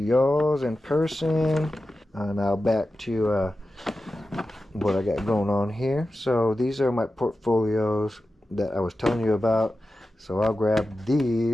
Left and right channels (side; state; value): both; normal; correlation 0.92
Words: in person. Now back to what I got going on here. So these are my portfolios that I was telling you about. So I'll grab